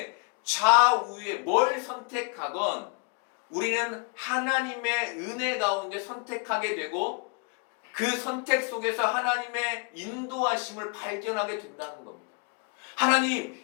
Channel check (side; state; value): right; quieter; 35.1 dB